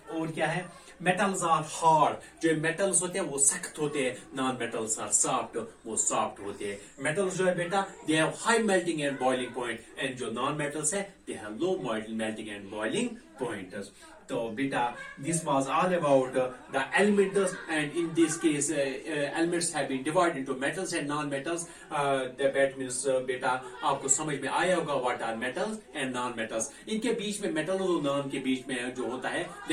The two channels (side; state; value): both; identical; correlation 1.00